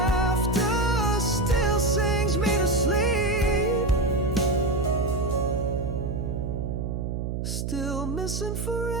still sings me to sleep. Still missing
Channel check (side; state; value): right; noise; hum, 3 dB below the sound